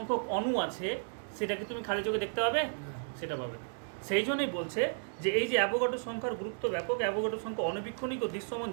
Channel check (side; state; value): left; silent; digital silence